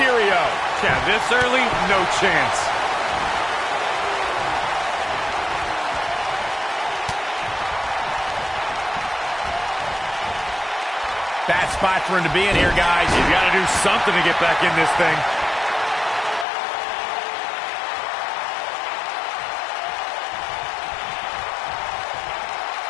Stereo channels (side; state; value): right; drops out; at 16.4 s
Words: Yeah, this early, no chance. Bad spot for him to be in here, guys. He's got to do something to get back in this thing.